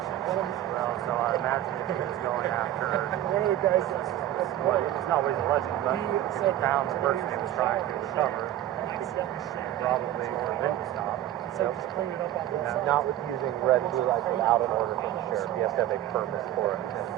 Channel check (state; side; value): quieter; left; 13.0 dB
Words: Well, so I imagine if he was going after one of the guys well, it's not what he's alleging, but if he found the person he was trying to recover, probably order them to stop. Not with using red and blue lights without an order from the sheriff. He has to have a permit for it.